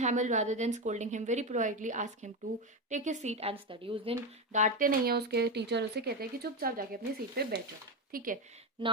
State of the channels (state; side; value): normal; both; correlation 0.14